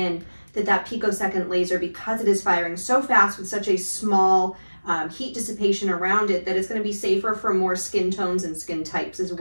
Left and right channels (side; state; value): both; inverted; correlation -1.00